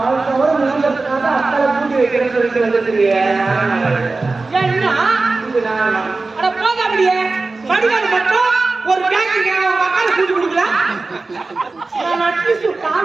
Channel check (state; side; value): quieter; left; 3.6 dB